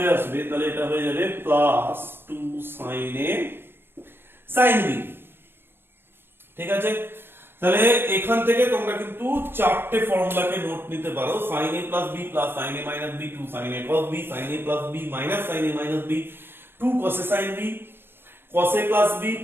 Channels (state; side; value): late; left; 0.10 ms